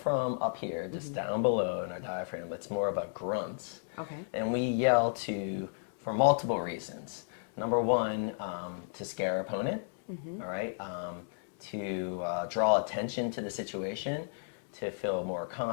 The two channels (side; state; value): right; silent; digital silence